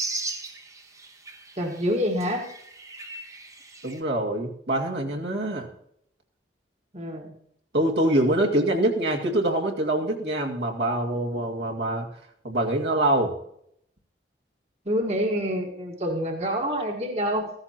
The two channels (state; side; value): normal; both; correlation 0.24